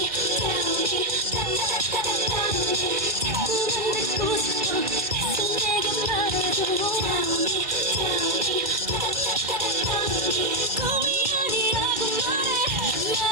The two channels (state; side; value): late; left; 2.2 ms